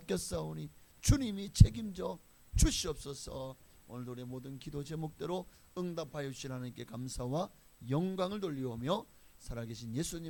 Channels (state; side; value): identical; both; correlation 1.00